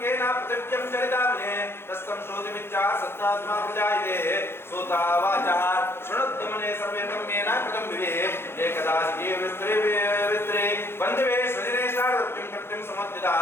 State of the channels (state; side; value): late; right; 0.11 ms